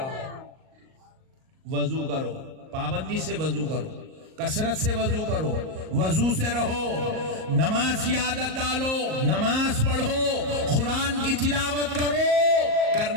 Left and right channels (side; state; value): left; late; 38 ms